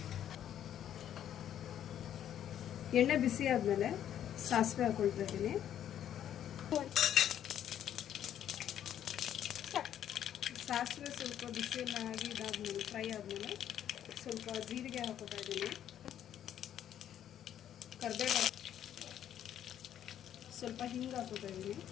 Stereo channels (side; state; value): right; quieter; 10.4 dB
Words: ಎಣ್ಣೆ ಬಿಸಿ ಆದಮೇಲೆ ಸಾಸಿವೆ ಹಾಕೊಳ್ತಾ ಇದ್ದೀನಿ. ಸಾಸಿವೆ ಸ್ವಲ್ಪ ಬಿಸಿಯೆಲ್ಲ ಆಗಿ ಇದಾದ್ಮೇಲೆ ಫ್ರೈ ಆದಮೇಲೆ ಸ್ವಲ್ಪ ಜೀರಿಗೆ ಹಾಕೋತಾ ಇದ್ದೀನಿ. ಕರಿಬೇವು, ಸ್ವಲ್ಪ ಹಿಂಗೆ ಹಾಕೋತಾ ಇದ್ದೀನಿ.